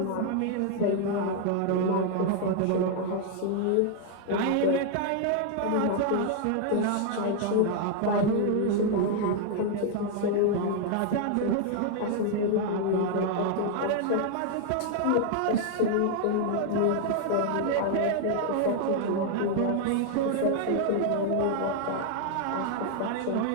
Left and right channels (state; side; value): different; both; correlation 0.00